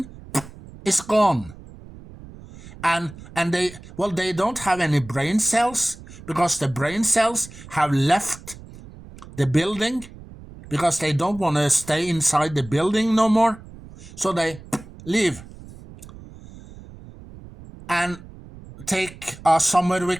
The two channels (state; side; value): noise; right; rumble, 18 dB below the sound